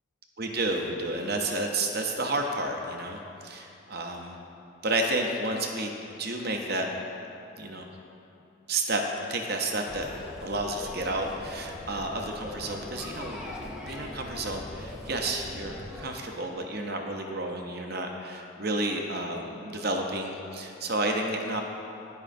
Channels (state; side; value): normal; both; correlation 0.04